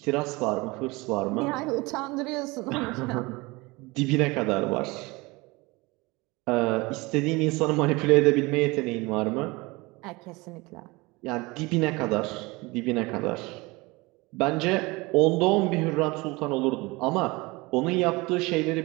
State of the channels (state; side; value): quieter; left; 23.7 dB